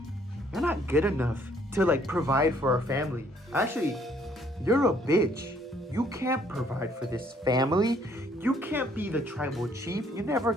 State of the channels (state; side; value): normal; both; correlation 0.64